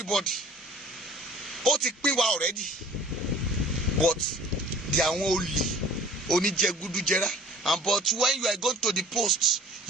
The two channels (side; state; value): both; normal; correlation 0.48